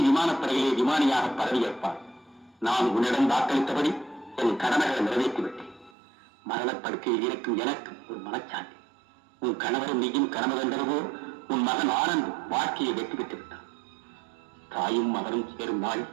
விமானப்படையிலே விமானியாக பதவியேற்பான். நான் உன்னிடம் வாக்களித்தபடி என் கடமைகளை நிறைவேற்றிவிட்டேன். மரணப்படுக்கையில் இருக்கும் எனக்கு ஒரு மனச்சாந்தி. உன் கணவரும் நீயும் கனவு கண்டதுவோ உன் மகன் ஆனந்த் வாழ்க்கையை வெற்றி பெற்று விட்டான். தாயும் மகனும் சேரும் நாளில்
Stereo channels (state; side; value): drops out; left; at 5.9 s